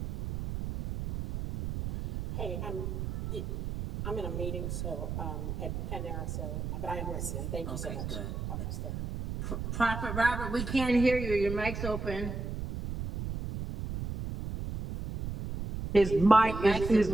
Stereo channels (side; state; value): right; noise; rumble, 5 dB below the sound